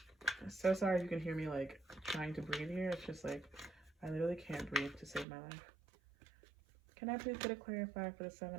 I'm so sorry if you can hear me like trying to breathe here. It's just like I literally can't breathe to save my life. Can I please get a clarifier for the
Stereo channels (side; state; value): left; drops out; at 5.2 s